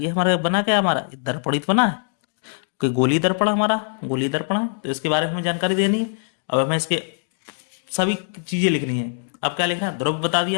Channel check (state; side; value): silent; right; digital silence